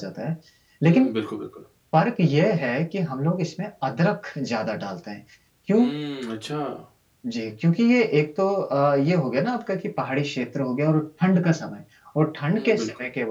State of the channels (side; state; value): both; identical; correlation 1.00